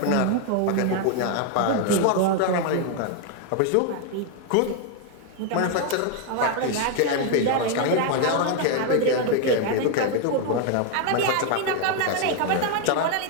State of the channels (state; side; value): different; both; correlation 0.01